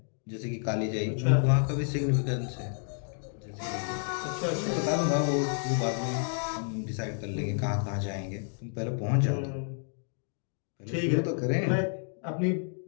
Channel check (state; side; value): silent; right; 58 dB below the other